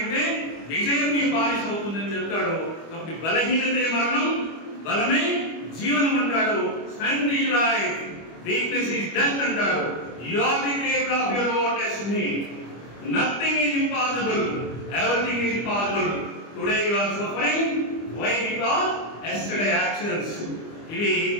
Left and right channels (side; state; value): right; late; 25 ms